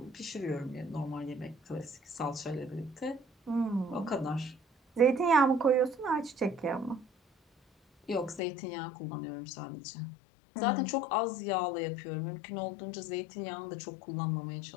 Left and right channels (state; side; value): drops out; right; at 8.4 s